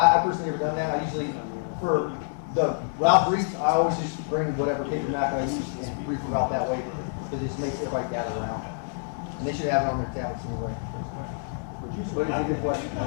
personally never done that. I usually, for the route briefs, I always just bring whatever paper map I use and brief the route that way, because it just makes everybody gather around. And they should have it on their tablets anyway. What is a good question?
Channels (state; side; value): silent; right; digital silence